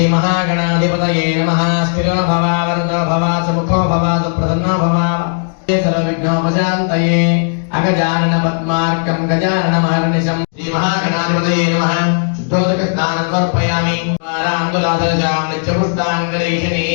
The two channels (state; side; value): silent; right; digital silence